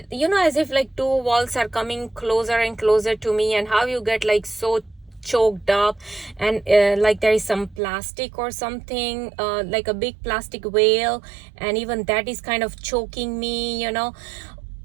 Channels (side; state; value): left; drops out; at 7.8 s